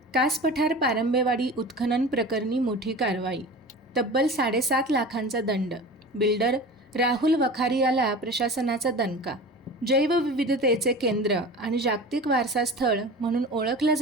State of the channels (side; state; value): both; normal; correlation 0.35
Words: कास पठार पारंबेवाडी उत्खनन प्रकरणी मोठी कारवाई. तब्बल 7.5 लाखांचा दंड. बिल्डर राहुल वखारियाला प्रशासनाचा दणका. जैवविविधतेचे केंद्र आणि जागतिक वारसा स्थळ म्हणून ओळखल्या